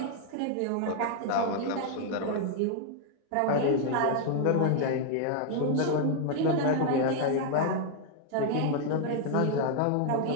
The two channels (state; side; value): different; both; correlation 0.00